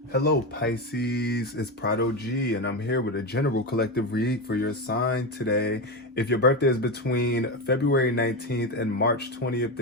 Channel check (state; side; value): normal; both; correlation 0.16